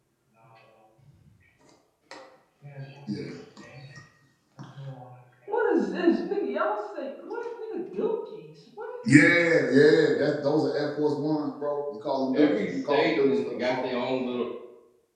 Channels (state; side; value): identical; both; correlation 1.00